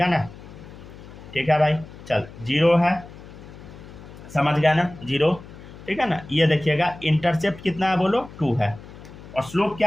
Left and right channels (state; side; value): noise; left; hum, 17 dB below the sound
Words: है ना। ठीक है भाई, चल 0 है, समझ गया ना, 0, ठीक है ना। ये देखिएगा इंटरसेप्ट कितना है बोलो, 2 है, और स्लोप